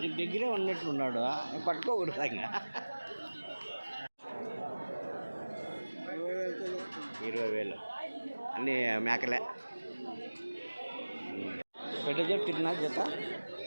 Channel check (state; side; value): inverted; both; correlation -1.00